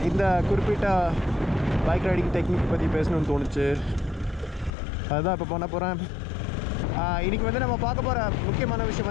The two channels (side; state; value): right; drops out; at 4.8 s